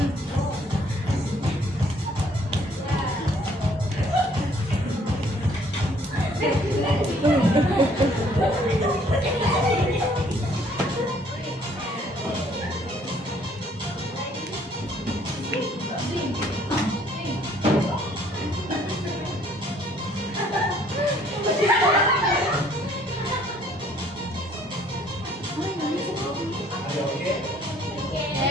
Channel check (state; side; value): normal; both; correlation 0.61